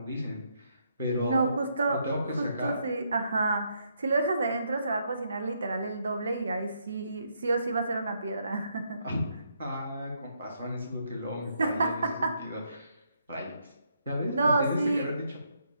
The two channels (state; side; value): inverted; both; correlation -0.75